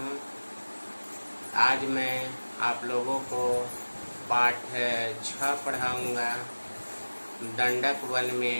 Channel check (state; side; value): inverted; both; correlation -1.00